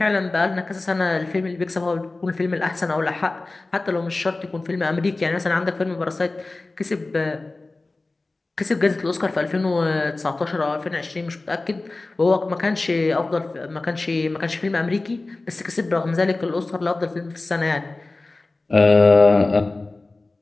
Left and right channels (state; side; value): quieter; right; 3.2 dB